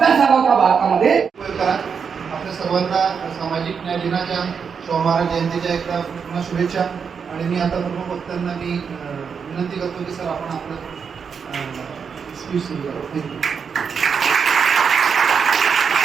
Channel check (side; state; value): left; quieter; 6.3 dB